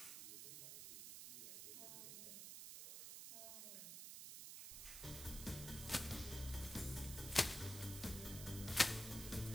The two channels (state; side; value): noise; right; hiss, 8 dB below the sound